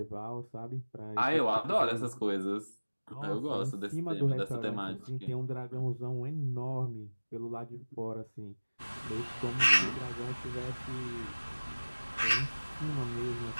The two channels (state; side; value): inverted; both; correlation -1.00